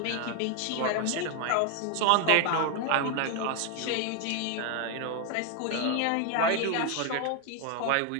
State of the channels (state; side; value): different; both; correlation 0.00